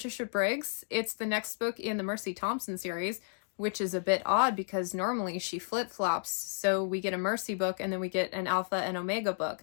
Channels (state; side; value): silent; right; digital silence